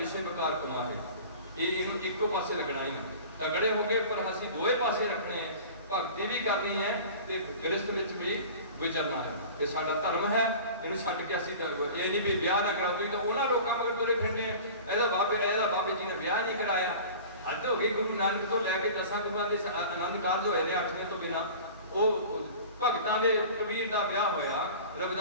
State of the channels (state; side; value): inverted; both; correlation -0.40